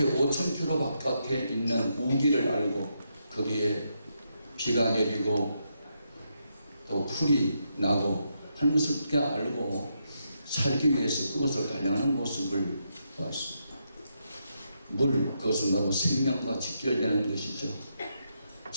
5,000km 바깥에 있는 우기를 알고 거기에 비가 내리고 또 풀이 나고 하는 것을 어떻게 알고 살기 위해서 그것을 달려가는 모습을 보았습니다. 물, 그것은 바로 생명과 직결되는 것이죠.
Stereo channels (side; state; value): both; inverted; correlation -0.81